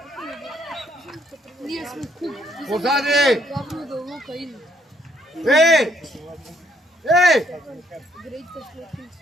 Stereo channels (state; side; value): normal; both; correlation 0.69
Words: Ние сме куп. Позади! Главно да лука иде. Еј!